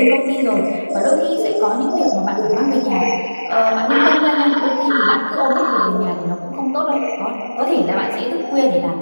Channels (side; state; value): both; inverted; correlation -1.00